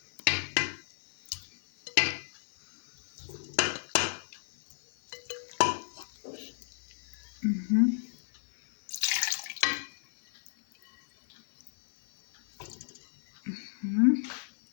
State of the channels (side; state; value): right; silent; 56 dB below the other